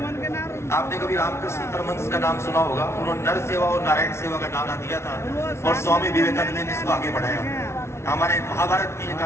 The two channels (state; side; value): late; right; 0.13 ms